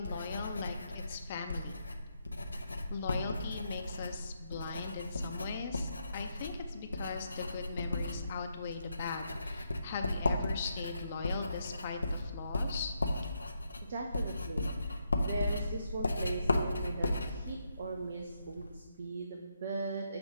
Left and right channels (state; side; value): inverted; both; correlation -0.80